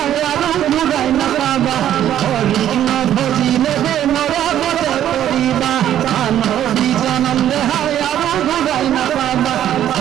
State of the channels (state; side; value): quieter; left; 11.2 dB